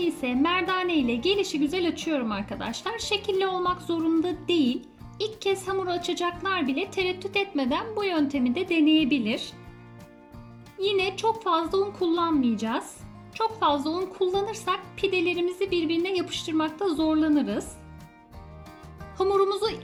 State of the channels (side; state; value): both; identical; correlation 1.00